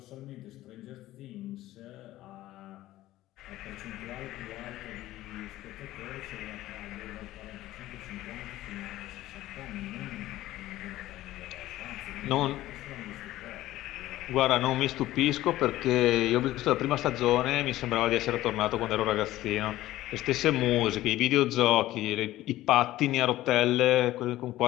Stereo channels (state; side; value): quieter; right; 15.5 dB